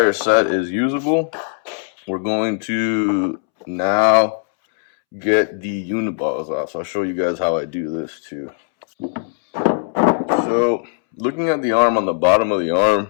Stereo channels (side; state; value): right; silent; 67 dB below the other